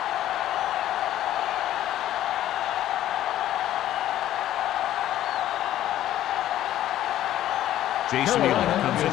Jason Elam comes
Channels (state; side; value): quieter; right; 12.8 dB